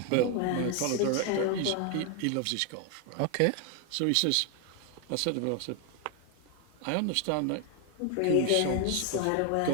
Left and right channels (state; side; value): different; both; correlation 0.00